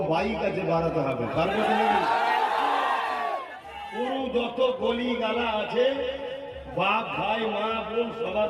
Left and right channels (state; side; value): identical; both; correlation 1.00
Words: বাইক আছে বাড়াতে হবে, পারবে পুরো যত গলি গালা আছে, বাপ ভাই মা বোন সবার